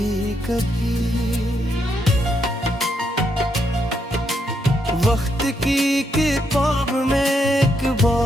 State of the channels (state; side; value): normal; both; correlation 0.78